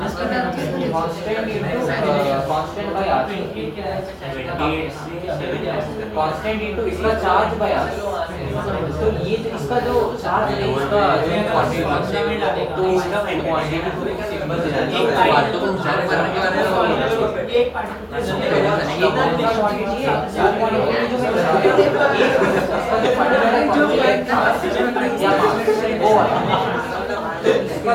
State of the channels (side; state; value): both; identical; correlation 1.00